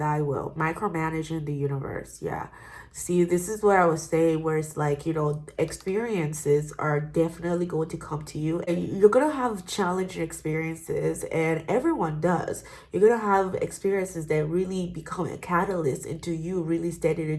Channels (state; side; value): identical; both; correlation 1.00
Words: will, micromanaging the universe. Yeah. See, this is where I was saying where it's like, experiences are definitely going to come to you and you're going to have challenging experiences, and everyone does. You're going to have experiences that really become a catalyst into you really stepping